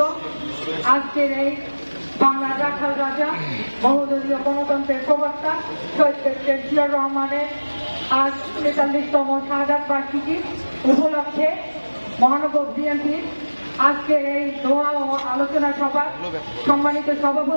আজকের এই বাংলার রাখাল রাজা বহুদলীয় গণতন্ত্রের প্রবক্তা শহীদ প্রেসিডেন্ট জিয়াউর রহমানের আজ ৪৩তম শাহাদাত বার্ষিকী উপলক্ষে মহানগর বিএনপির আজকের এই দোয়া ও আলোচনা সভা সম্মানিত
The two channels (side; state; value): both; inverted; correlation -1.00